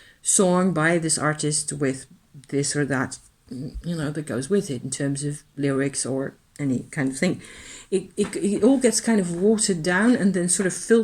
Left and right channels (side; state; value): both; identical; correlation 1.00